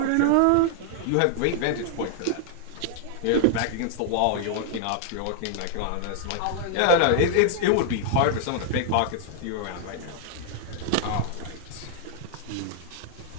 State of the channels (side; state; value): both; different; correlation 0.00